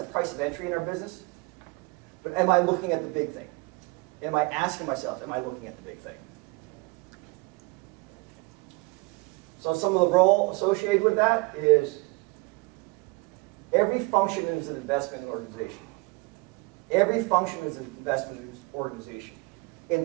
a price of entry in our business. But am I looking at the big thing? Am I asking myself, am I looking at the big thing? So some of the role associated with that is every function is an investment in an organization. Every function is an investment in an organization.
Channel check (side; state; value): left; quieter; 27.5 dB